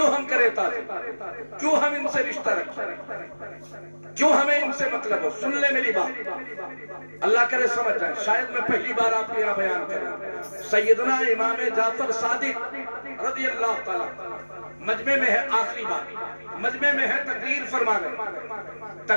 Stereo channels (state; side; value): inverted; both; correlation -1.00